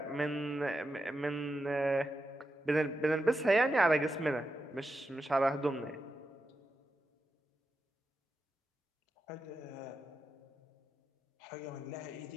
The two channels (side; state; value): both; normal; correlation 0.88